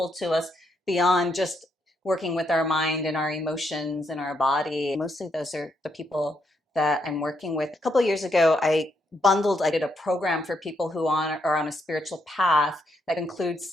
to us beyond just working with our mind and our emotions and our body. Mostly those are the people that I'm working with. A couple of years ago, I bundled. I did a program for people who are on a spiritual path that includes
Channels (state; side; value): normal; both; correlation 0.78